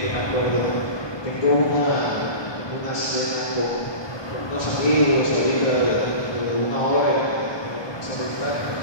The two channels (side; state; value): right; late; 1.2 ms